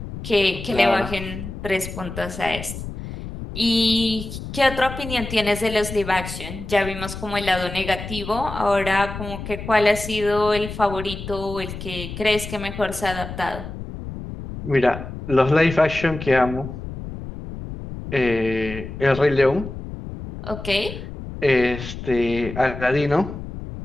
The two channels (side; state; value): left; noise; rumble, 9 dB below the sound